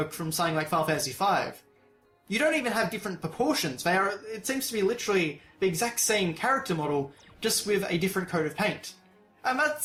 from something like Final Fantasy V, you don't even have different proportions. It seems to be literally the exact same character model, just with a different coat of paint. And that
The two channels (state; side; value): identical; both; correlation 1.00